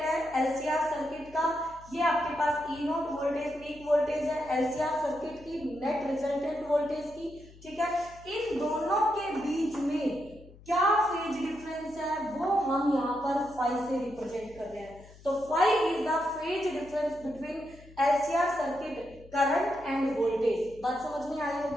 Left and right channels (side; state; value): left; noise; hum, 21 dB below the sound